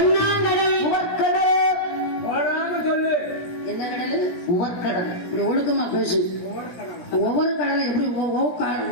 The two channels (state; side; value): late; right; 17 ms